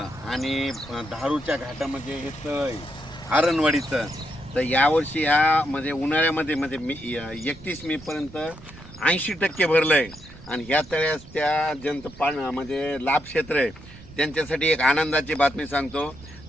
आणि धारूच्या घाटामध्ये हे तळ आहे आरणवाडीचं. तर यावर्षी ह्या म्हणजे उन्हाळ्यामध्ये म्हणजे मी 31 मे पर्यंत 80% भरलं आहे आणि ह्या तळ्यास त्या ज्यांचं म्हणजे लाभ क्षेत्र आहे त्यांच्यासाठी एक आनंदाची बातमी सांगतो.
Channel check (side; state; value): right; noise; rumble, 19 dB below the sound